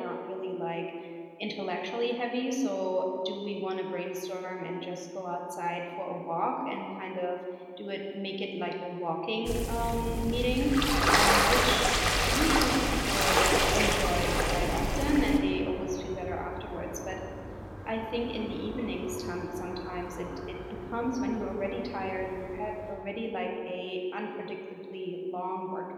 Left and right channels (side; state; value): both; identical; correlation 1.00